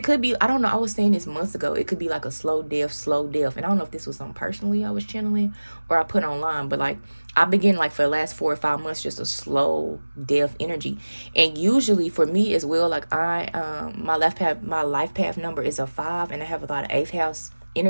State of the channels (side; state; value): both; inverted; correlation -1.00